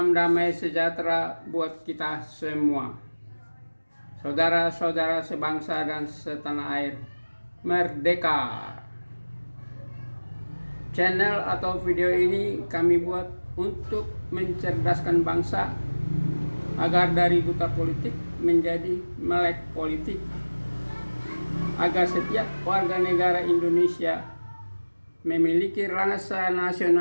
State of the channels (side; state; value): both; inverted; correlation -1.00